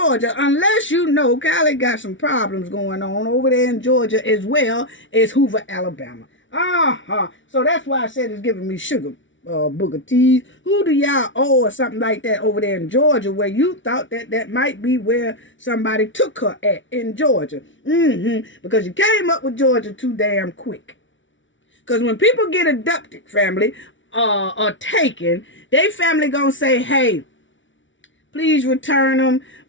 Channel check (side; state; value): right; late; 0.56 ms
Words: Unless Carlee got some problems going on over there in Georgia as well as Hoover, Alabama. So that's why I said it's giving me sugar booger teas. Who do y'all owe or something like that over there in Georgia where you thought that might be where somebody took her at in Georgia? Because you came up with Georgia too damn quick. Because when people get abducted, family, or taken, they family gonna say, hey, please return them.